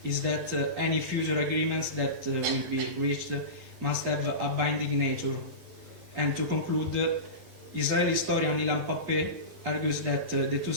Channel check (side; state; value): left; late; 11 ms